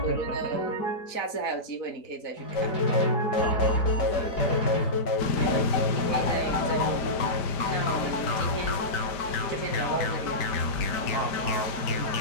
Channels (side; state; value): right; late; 5.0 ms